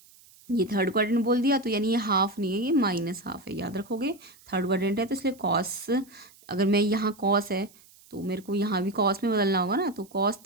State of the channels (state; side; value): noise; right; hiss, 26 dB below the sound